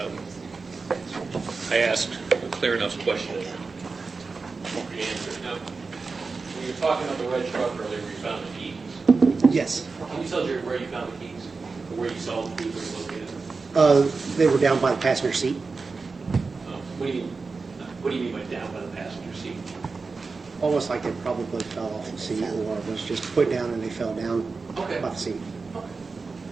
I asked clear enough question. The answer. Now, when you were talking about the red truck earlier, where you found the keys, Yes. can you tell us where you found the keys? Or where you saw the keys, where you located them? They were down by the passenger seat. What do you mean by down by the passenger seat? Almost like they probably fell off the seat or was just put down and they fell down Okay. by the seat.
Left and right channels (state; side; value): quieter; left; 4.3 dB